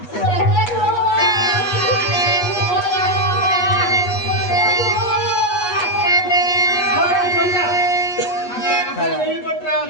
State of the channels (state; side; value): late; right; 8.3 ms